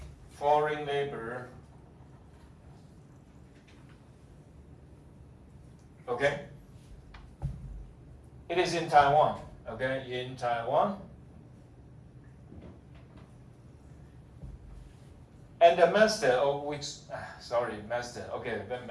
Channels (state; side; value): identical; both; correlation 1.00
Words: foreign labor, okay? It is in Taiwan, okay? In Taiwan. And the master, of which, master, okay,